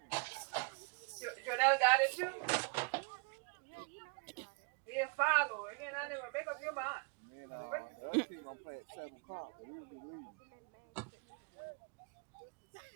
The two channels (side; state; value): left; quieter; 34.7 dB